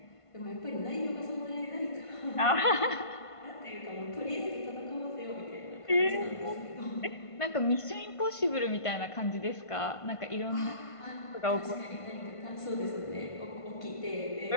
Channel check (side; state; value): right; late; 1.5 ms